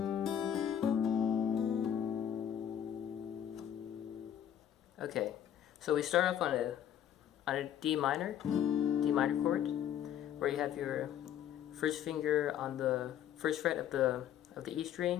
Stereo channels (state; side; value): quieter; right; 10.0 dB